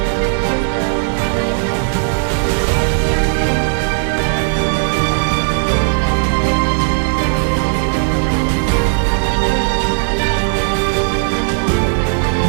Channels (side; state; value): left; silent; 66 dB below the other